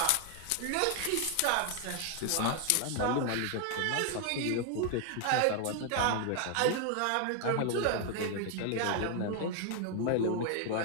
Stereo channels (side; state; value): both; different; correlation 0.00